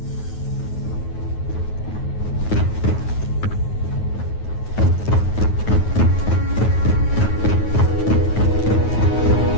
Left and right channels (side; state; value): right; late; 9.4 ms